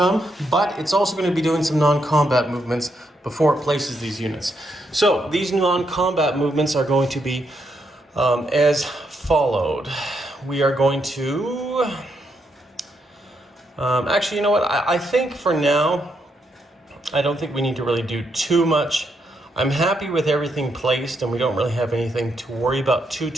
but it's also going to be doing some non-combat movements before it places these units. So these non-combat movements are going to be as followed. We are going to actually, you know what, I think for now I don't think we need to really do too much. I'm happy with everything placed, and we don't really have anything to worry about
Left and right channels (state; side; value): normal; both; correlation 0.79